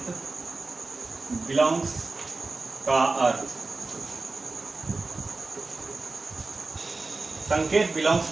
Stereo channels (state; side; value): quieter; left; 3.6 dB